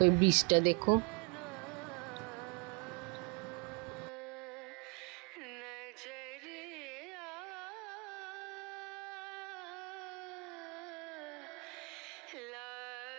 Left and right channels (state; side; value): quieter; left; 33.2 dB